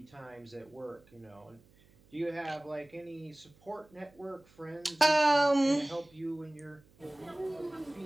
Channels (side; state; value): right; noise; hum, 29 dB below the sound